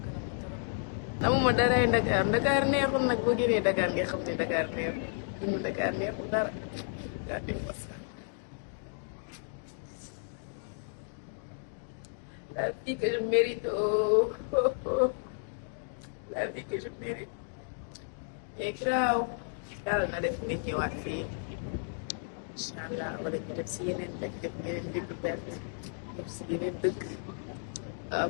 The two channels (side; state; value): right; silent; digital silence